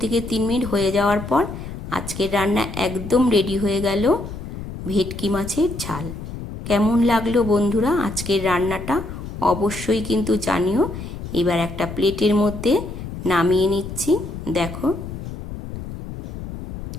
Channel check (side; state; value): left; noise; rumble, 9 dB below the sound